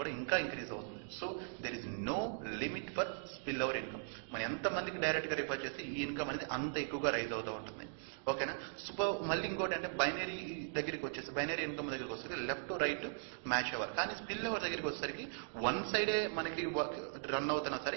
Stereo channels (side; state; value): left; silent; digital silence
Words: ఇంకా ఇంక్రీజ్ అవుతుంది. So there is no limit for spill over income. మనం ఎంతమందికి డైరెక్ట్గా రిఫర్ చేస్తే ఈ ఇన్కమ్ అనేది అంత ఎక్కువగా రైజ్ అవుతూ ఉంటుంది. ఓకేనా. సో మళ్ళీ ఇంకోటి అంటే బైనరీ దగ్గరికి వచ్చేసి, బైనరీ ఇన్కమ్ దగ్గరికి వచ్చేసరికి లెఫ్ట్ టు రైట్ మ్యాచ్ అవ్వాలి. కానీ స్పిల్ ఓవర్ దగ్గరికి వచ్చేసరికి వన్ సైడే మనకి రన్ అవుతున్నా